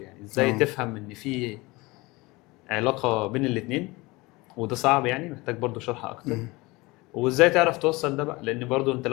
ازاي تفهم ان في علاقه بين الاثنين، وده صعب يعني محتاج برضو شرح اكتر. وازاي تعرف توصل ده بقى، لان برضو انت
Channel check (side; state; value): right; quieter; 22.9 dB